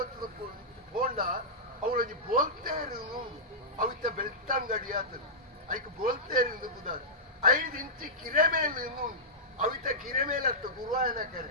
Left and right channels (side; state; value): both; normal; correlation -0.13